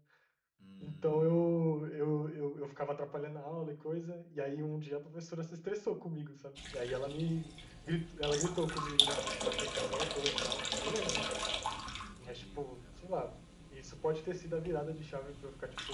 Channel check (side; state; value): both; identical; correlation 1.00